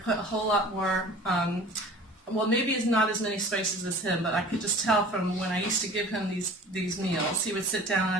put a whole lot more well, maybe it's not as many spices as him, but I could just tell from when I used to give him these meals. He would sit down and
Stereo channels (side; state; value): both; normal; correlation 0.43